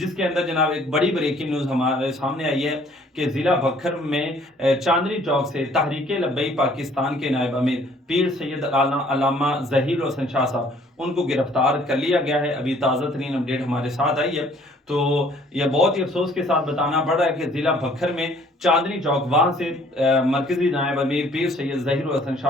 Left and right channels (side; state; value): both; normal; correlation 0.58